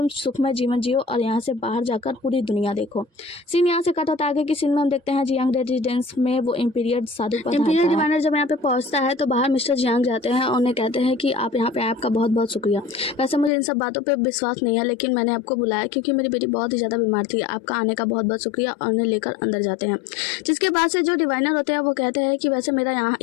सुखमय जीवन जियो और यहाँ से बाहर जाकर पूरी दुनिया देखो। सीन यहाँ से कट होता है आगे की सीन में हम देखते हैं जियांग रेजिडेंस में वो इम्पीरियर साधु इम्पीरियर डिवाइनर जब यहाँ पे पहुँचता है तो बाहर मिस्टर जियांग जाते हैं और उन्हें कहते हैं कि आप यहाँ पे आए आपका बहुत बहुत शुक्रिया। वैसे मुझे इन सब बातों पे विश्वास नहीं है लेकिन मैंने आपको बुलाया क्योंकि मेरी बेटी बहुत ही ज़्यादा बीमार थी। आपका आने का बहुत बहुत शुक्रिया, और उन्हें लेकर अंदर जाते हैं। जिसके बाद से जो डिवाइनर होते हैं वो कहते हैं कि वैसे मेरा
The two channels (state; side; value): drops out; right; at 13.5 s